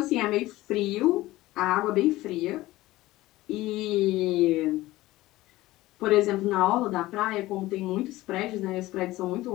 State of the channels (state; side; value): quieter; right; 17.6 dB